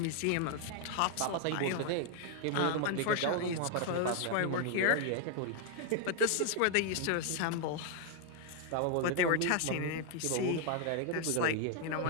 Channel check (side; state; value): both; different; correlation 0.00